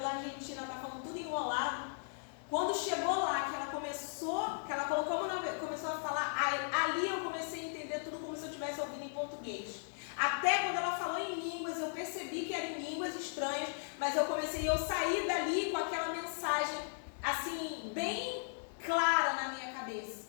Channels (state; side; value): silent; right; 53 dB below the other